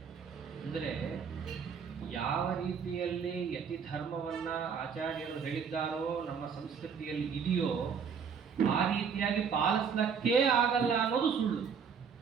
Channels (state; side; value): quieter; left; 6.5 dB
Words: ಅಂದರೆ ಯಾವ ರೀತಿಯಲ್ಲಿ ಯತಿ ಧರ್ಮವನ್ನ ಆಚಾರ್ಯರು ಹೇಳಿದ್ದಾರೋ ನಮ್ಮ ಸಂಸ್ಕೃತಿಯಲ್ಲಿ ಇದೆಯೋ ಆ ರೀತಿಯಾಗಿ ಪಾಲಿಸ್ಲಿಕ್ಕೇ ಆಗಲ್ಲ ಅನ್ನೋದು ಸುಳ್ಳು.